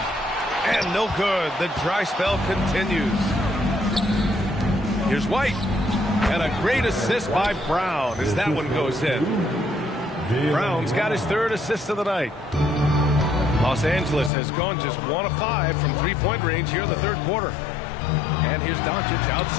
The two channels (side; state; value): right; drops out; at 14.3 s